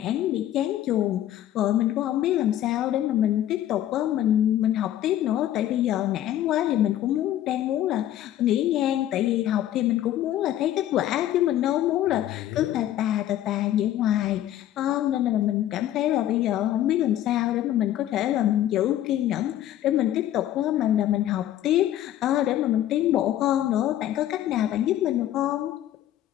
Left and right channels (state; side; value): quieter; right; 12.4 dB